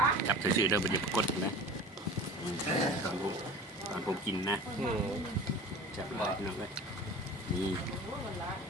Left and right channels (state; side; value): normal; both; correlation 0.38